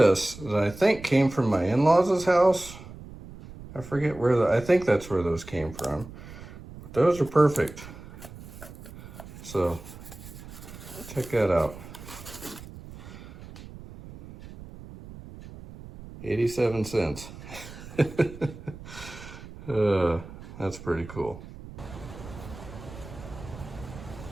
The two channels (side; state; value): right; noise; rumble, 15 dB below the sound